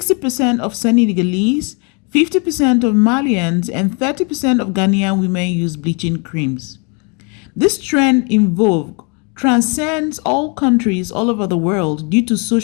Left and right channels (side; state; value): right; quieter; 34.4 dB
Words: of Senegalese, 50% of Malians, and 30% of Ghanaian women use bleaching creams. This trend in vogue transcends all countries all over the world due to